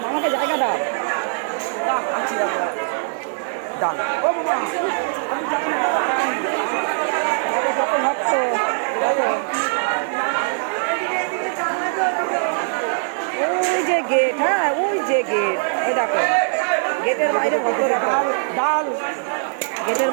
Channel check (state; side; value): silent; left; 65 dB below the other